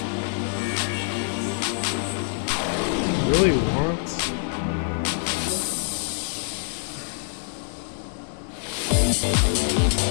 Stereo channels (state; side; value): silent; right; digital silence